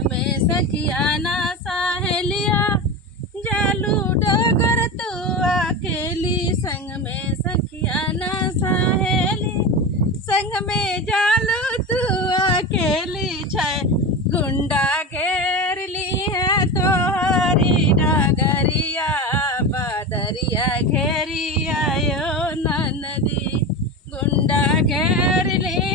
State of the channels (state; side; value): normal; both; correlation 0.23